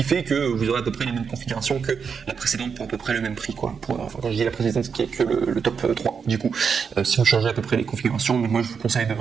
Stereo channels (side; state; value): left; quieter; 6.3 dB